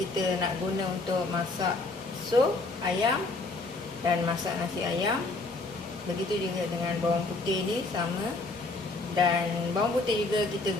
nak guna untuk masak sup ayam dan masak nasi ayam. Begitu juga dengan bawang putih ni sama. Dan bawang putih juga kita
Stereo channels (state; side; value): quieter; right; 3.3 dB